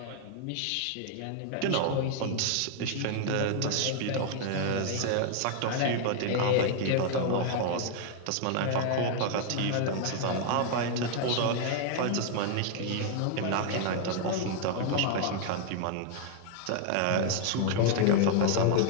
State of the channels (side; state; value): both; different; correlation 0.00